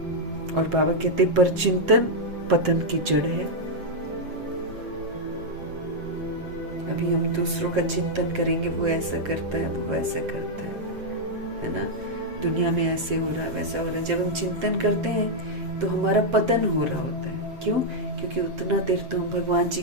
और बाबा कहते पर चिंतन पतन की जड़ है। अभी हम दूसरों का चिंतन करेंगे, वो ऐसा करता है, वो वैसा करता है ना, दुनिया में ऐसे हो रहा है, वैसा हो रहा है। जब हम चिंतन करते हैं तो हमारा पतन हो रहा होता है। क्यों? क्योंकि उतना देर तो हम भगवान जी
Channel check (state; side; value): late; left; 7.4 ms